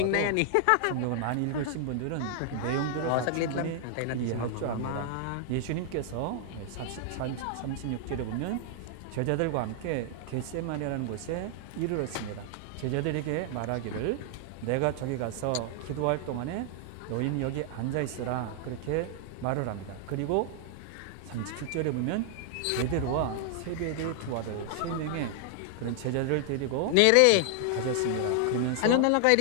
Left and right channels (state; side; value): different; both; correlation 0.00